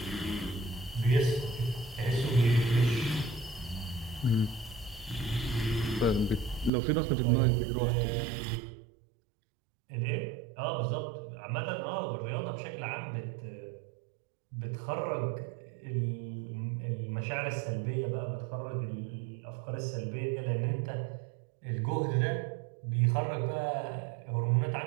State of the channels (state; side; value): drops out; left; at 6.7 s